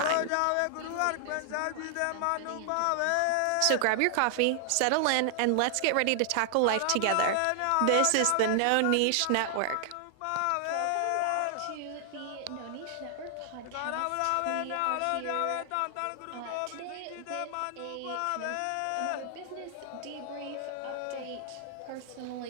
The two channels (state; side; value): different; both; correlation 0.00